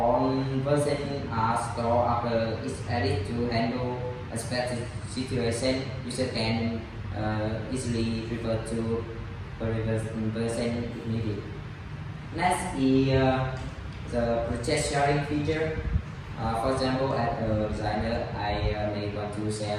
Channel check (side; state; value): both; identical; correlation 1.00